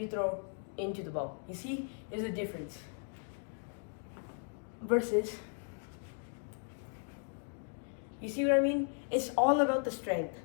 throw into the ball. You see, there's a difference. Versus, you see what I mean? It's all about the strength.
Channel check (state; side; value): silent; right; 53 dB below the other